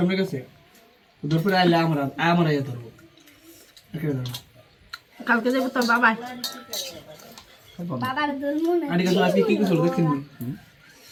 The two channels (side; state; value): both; identical; correlation 1.00